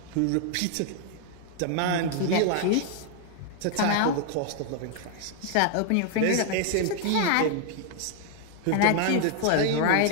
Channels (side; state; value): both; different; correlation 0.00